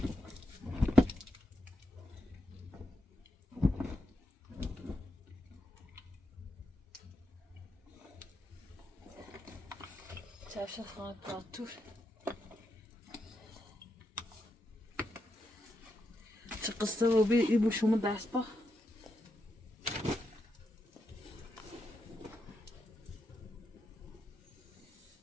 چشم خواهد پاتور چه قصه رو بی ای بو شما دست با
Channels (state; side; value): normal; both; correlation 0.84